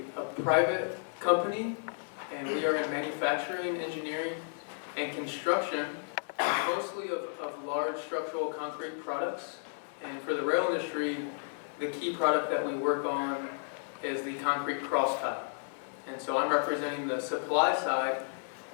private company, and we are in manufacturing, engineering, and construction, mostly of large structural concrete products. And for the rail industry, the key product that we work on is the concrete cross tie. And so I'm representing the supply side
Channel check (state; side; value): silent; right; digital silence